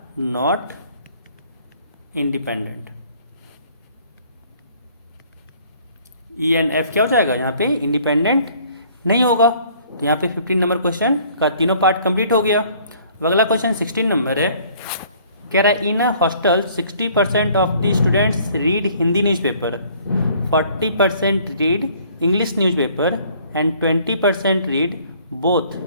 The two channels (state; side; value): inverted; both; correlation -0.58